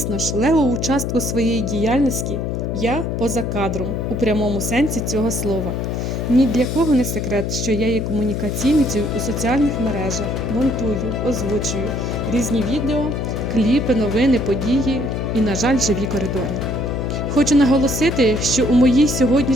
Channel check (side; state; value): left; noise; hum, 2 dB below the sound